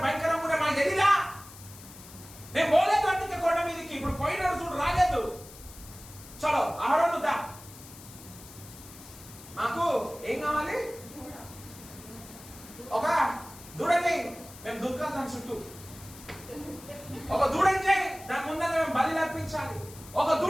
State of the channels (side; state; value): left; noise; hiss, 18 dB below the sound